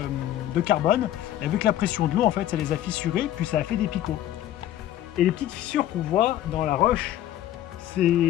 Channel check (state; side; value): quieter; right; 12.6 dB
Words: carbone et avec la pression de l'eau en fait ça les a fissurés puis ça a fait des picots. Et les petites fissures qu'on voit dans la roche, c'est